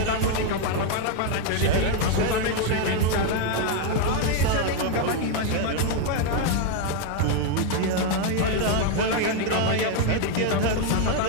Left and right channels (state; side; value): different; both; correlation 0.01